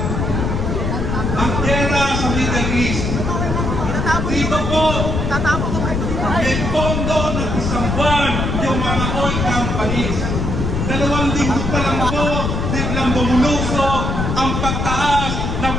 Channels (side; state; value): left; noise; rumble, 1 dB below the sound